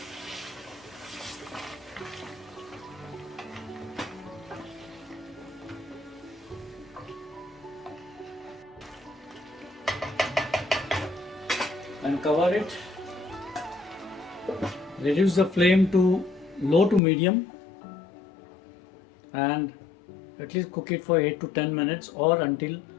And cover it. Reduce the flame to low to medium, and at least cook it for 8 to 10 minutes or until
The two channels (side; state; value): right; drops out; at 17.0 s